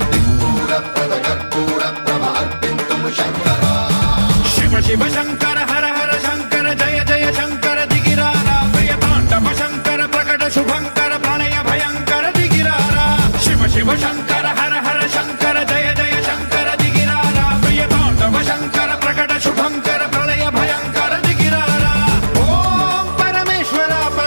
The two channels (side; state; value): both; inverted; correlation -1.00